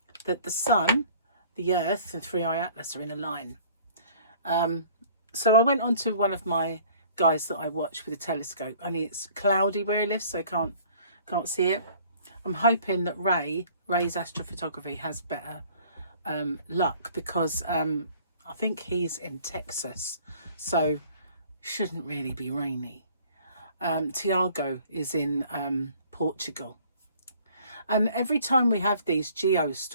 that the sun, the earth and Three-Eye Atlas are in a line. So I went on to one of my guys that I watch with a telescope, only it's cloudy where he lives, so I can't see it. I'm hoping that Ray's astrophotography has better luck, because I think he's in Texas, so shouldn't really be rainy. Tiago is in Portugal, and every time we have these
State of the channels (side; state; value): both; inverted; correlation -0.54